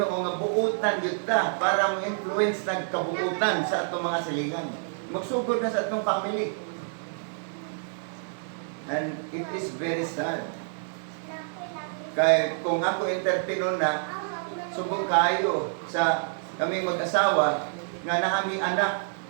nga buutan gyud ta para mo influence ng kabuutan sa atong mga silingan. Magsugod na sa atong family. And it is very sad. Kaya kung ako entertainer na, subong kayo sa kaming mag-asawa nga naami anak.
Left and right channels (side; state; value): left; silent; digital silence